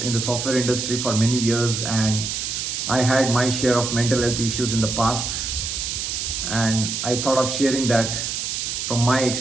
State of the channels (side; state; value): right; noise; hiss, 3 dB below the sound